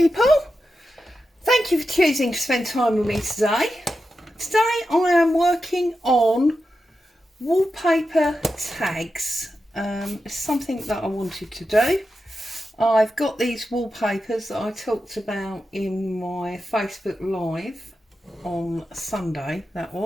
Thank you for choosing to spend time with me today. Today I am working on wallpaper tags. It's something that I wanted to do. I've got these wallpapers that I talked about in my Facebook Live on Sunday, that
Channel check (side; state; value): both; normal; correlation 0.90